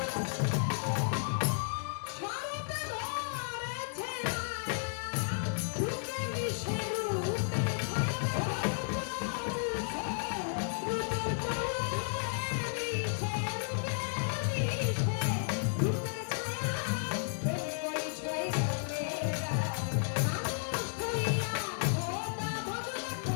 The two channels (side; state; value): right; silent; digital silence